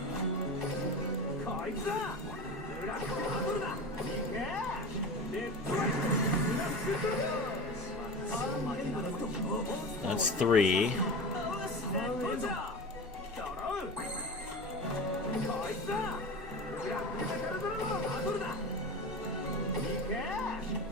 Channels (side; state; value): both; normal; correlation 0.28